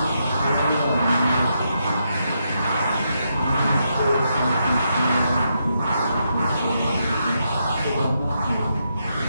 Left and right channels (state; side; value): inverted; both; correlation -0.81